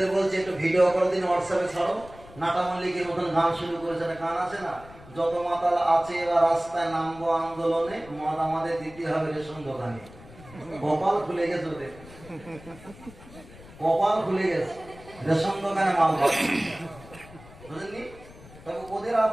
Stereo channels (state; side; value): noise; left; rumble, 20 dB below the sound